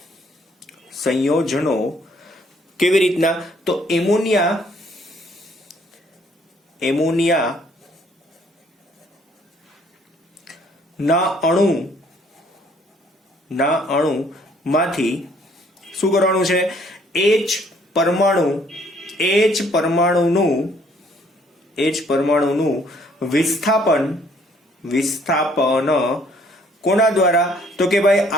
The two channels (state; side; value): normal; both; correlation 0.63